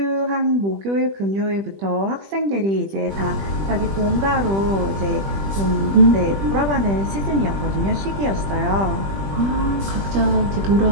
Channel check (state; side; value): late; left; 20 ms